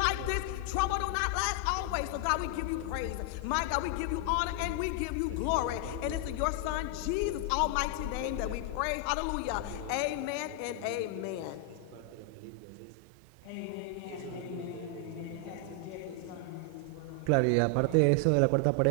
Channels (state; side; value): different; both; correlation 0.00